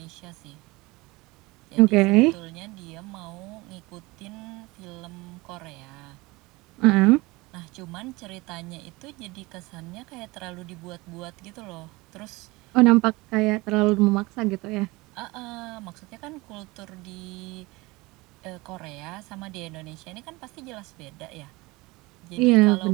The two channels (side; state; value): left; quieter; 22.6 dB